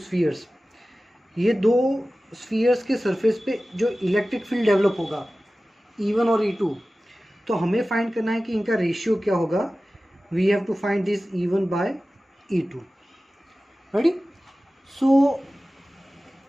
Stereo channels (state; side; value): normal; both; correlation 0.96